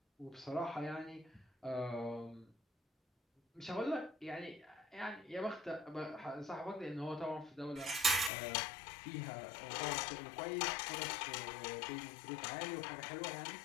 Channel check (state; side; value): drops out; right; at 8.3 s